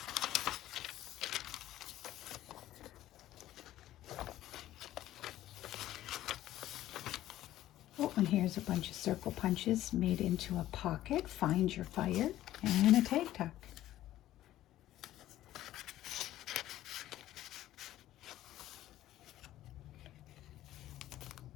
Oh, and here's a bunch of circle punches made into a pocket. Find your fire. And a tag tuck.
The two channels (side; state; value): right; quieter; 14.0 dB